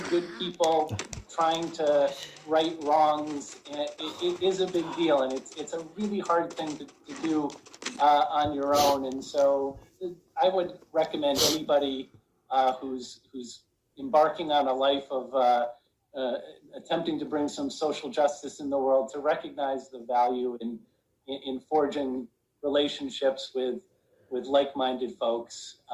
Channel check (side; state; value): both; identical; correlation 1.00